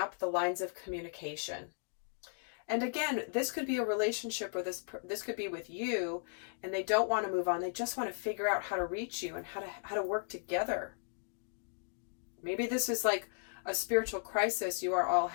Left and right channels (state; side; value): silent; right; digital silence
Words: the lines of communication? And again, this could be a relationship where this could be with you, and they don't want to move on. They just want to figure out how to reach you and how to work together. Maybe this is like a spiritual crisis you are all